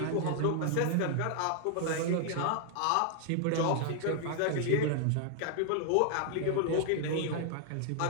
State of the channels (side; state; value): both; different; correlation 0.00